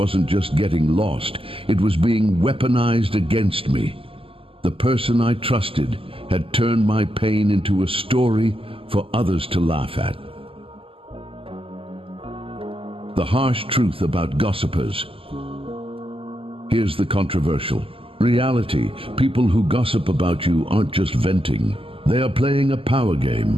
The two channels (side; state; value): left; late; 0.26 ms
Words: just getting lost, it was being weaponized against me. The person I trusted had turned my pain into a story for others to laugh at. The harsh truth about gossipers. Here's the controversial. Reality, people who gossip about you aren't just venting. They are playing a power